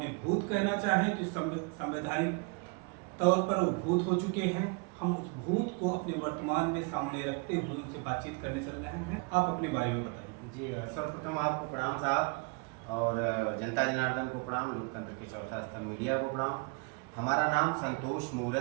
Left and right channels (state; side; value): quieter; left; 32.2 dB